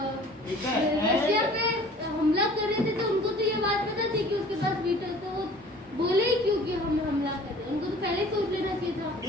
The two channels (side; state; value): both; normal; correlation 0.48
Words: ठीक है, रशिया पे हमला कर रहे थे तो उनको तो ये बात पता थी कि उसके पास वीटर, तो वो बोले ही क्यों कि हम हमला कर रहे हैं? उनको तो पहले ही सोच लेना चाहिए था।